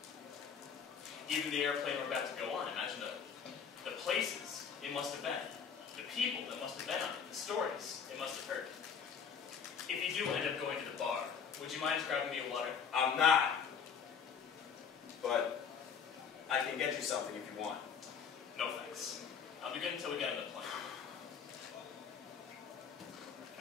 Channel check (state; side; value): quieter; right; 6.7 dB